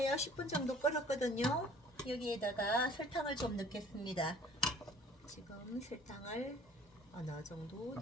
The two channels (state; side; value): normal; both; correlation 0.51